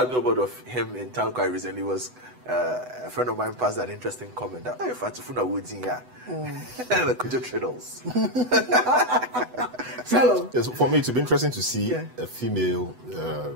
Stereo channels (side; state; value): left; late; 8.0 ms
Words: a billboard of him in town quite recently. Was a friend of mine passed an interesting comment that if I Fatufuna Woods in here, the Kojo Traders. Yes, for me, it would be interesting to see a female